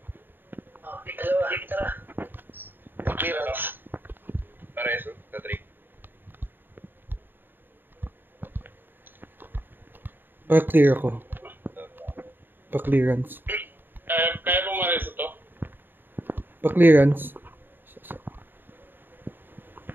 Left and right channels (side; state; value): left; late; 0.094 ms